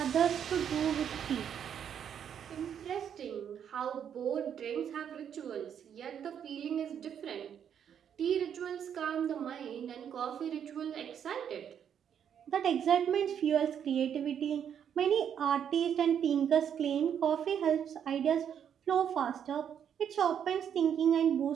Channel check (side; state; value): left; quieter; 8.6 dB